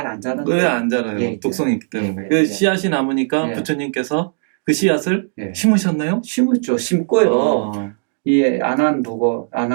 안 자라는 왜 안 자라요? 독성이 있기 때문에. 그 씨앗이 남으니까 부처님께서 그 씨앗을 심으셨나요? 심었죠. 심고요. 이 안한 보고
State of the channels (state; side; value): silent; left; digital silence